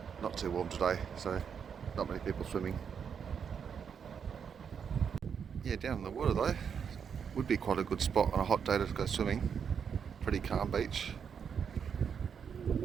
Not too warm today, so not many people swimming. Yeah, down in the water though, would be quite a good spot on a hot day to go swimming. Pretty calm beach.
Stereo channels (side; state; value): left; quieter; 7.1 dB